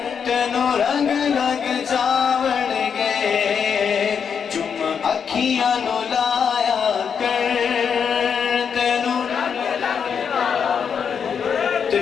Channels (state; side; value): quieter; right; 6.9 dB